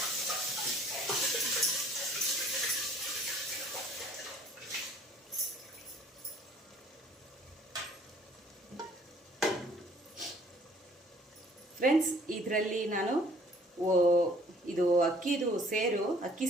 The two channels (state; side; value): normal; both; correlation 0.56